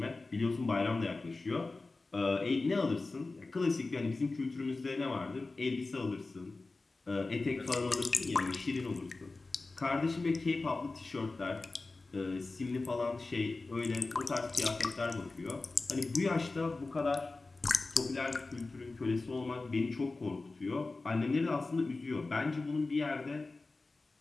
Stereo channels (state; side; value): quieter; right; 3.5 dB